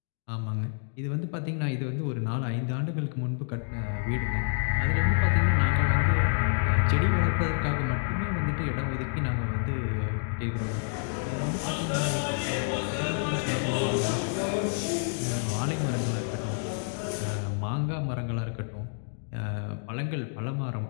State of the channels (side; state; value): right; silent; 59 dB below the other